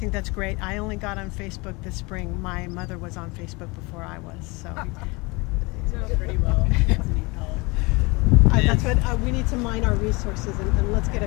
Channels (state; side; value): quieter; right; 26.1 dB